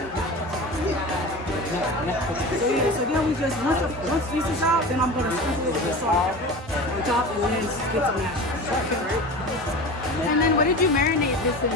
so then we just once this is out, then I'm gonna sprinkle it with the salt on top and then get some mashed. And then what did you marinate this in?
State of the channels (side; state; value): both; normal; correlation 0.32